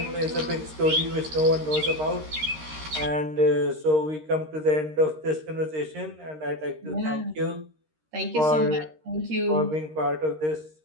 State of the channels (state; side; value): late; left; 13 ms